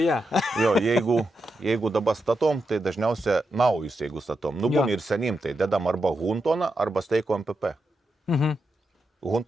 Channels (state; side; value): normal; both; correlation 0.86